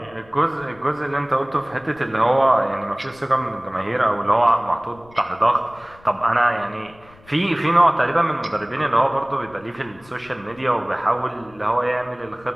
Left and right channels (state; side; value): noise; left; rumble, 26 dB below the sound